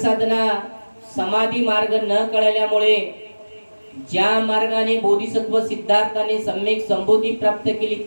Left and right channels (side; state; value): both; inverted; correlation -1.00